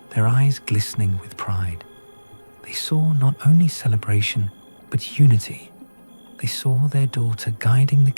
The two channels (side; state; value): both; inverted; correlation -1.00